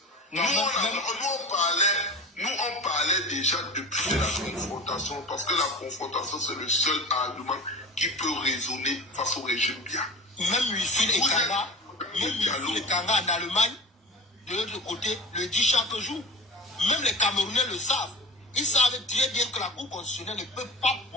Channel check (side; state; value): both; normal; correlation 0.32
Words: Nous, on parlait déjà depuis la confrontation, parce que la confrontation, c'est le seul argument qui peut résonner face au régime bien. Même ici, les Kanga en Allemagne, de l'autre côté, le dit chaque jour. Même les Camerounais le savent. Ils savent très bien que la Cour constitutionnelle ne peut pas